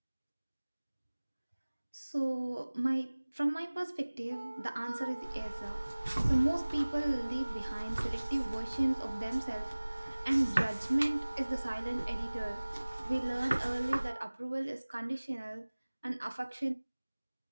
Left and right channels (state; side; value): inverted; both; correlation -1.00